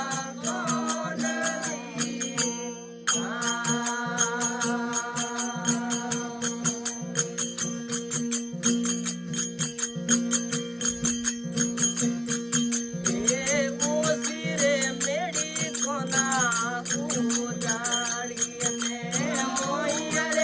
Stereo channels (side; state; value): both; identical; correlation 1.00